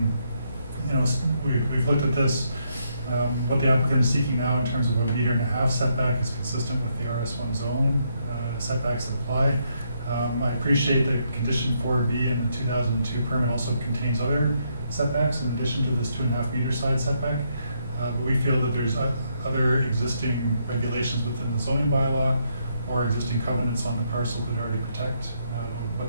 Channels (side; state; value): both; inverted; correlation -0.76